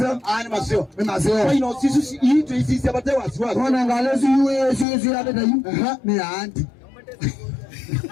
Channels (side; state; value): right; drops out; at 4.9 s